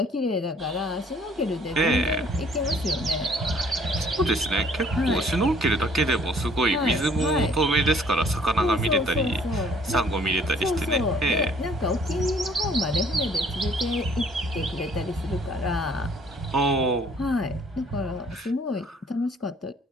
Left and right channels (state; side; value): normal; both; correlation 0.59